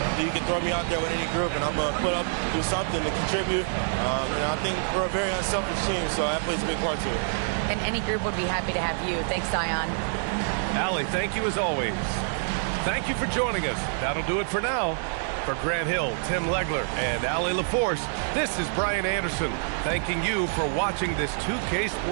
You can throw me out there with any group, and I'm going to put up, do something to contribute. And I think we're a very unselfish team, so that plays a big part to it. And any group would be happy to have you. Thanks, Zion. Allie, thank you as always. Thank you for joining us. That'll do it for now. For Grant Hill, Tim Legler, and Allie LaForce, this is Brian Anderson, thanking you for watching this 2K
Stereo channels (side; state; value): left; silent; digital silence